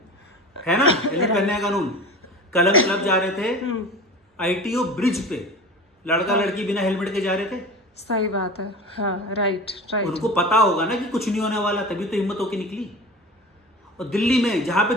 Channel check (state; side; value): normal; both; correlation 0.34